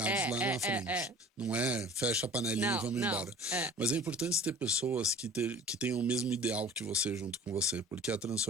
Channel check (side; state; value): both; normal; correlation 0.44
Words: lá na frente. Não é fecha a panelinha e vamos embora. Mas é importante ter pessoas que tenham o mesmo ideal que você junto com você, porque a